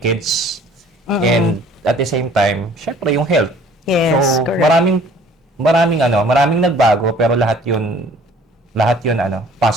And at the same time, syempre yung health. Yes, So correct. maraming nagbago pero lahat yun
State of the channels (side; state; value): both; normal; correlation 0.53